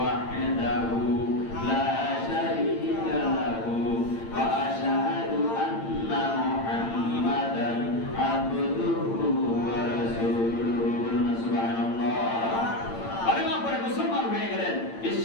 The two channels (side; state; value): right; late; 8.8 ms